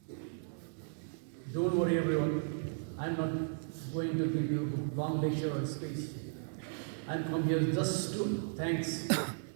Don't worry everyone, I'm not going to give you a long lecture or speech. I'm come here just to thanks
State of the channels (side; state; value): left; silent; digital silence